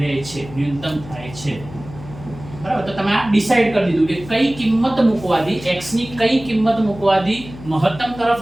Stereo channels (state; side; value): noise; left; hum, 16 dB below the sound